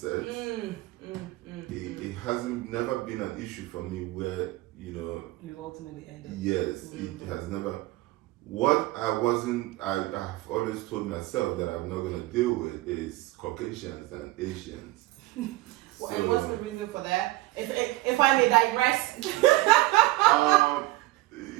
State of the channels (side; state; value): left; quieter; 19.2 dB